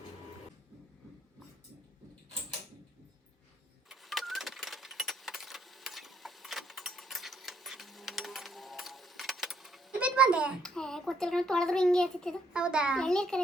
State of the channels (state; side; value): normal; both; correlation 0.69